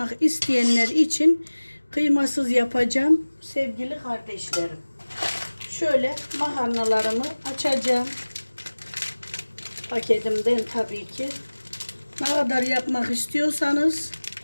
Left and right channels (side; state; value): both; inverted; correlation -1.00